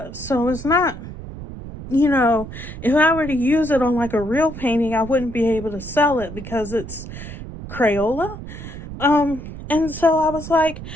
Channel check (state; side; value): noise; right; rumble, 11 dB below the sound